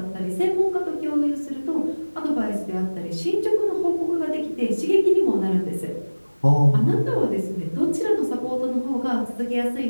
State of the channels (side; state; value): both; inverted; correlation -1.00